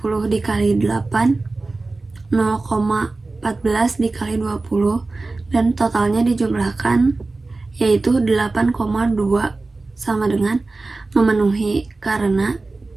dikali 8, 0,14 dikali 20, dan totalnya dijumlahkan yaitu 8,2, sama dengan memenuhi karena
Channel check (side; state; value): left; quieter; 3.4 dB